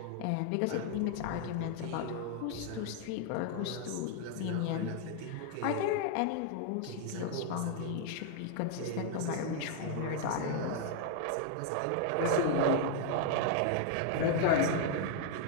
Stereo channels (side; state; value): both; different; correlation 0.00